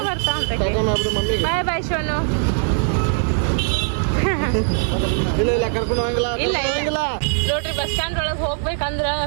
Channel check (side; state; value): left; silent; 60 dB below the other